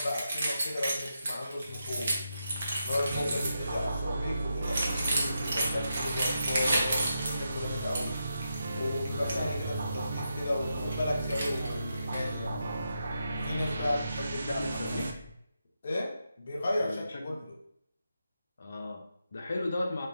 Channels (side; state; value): both; inverted; correlation -0.86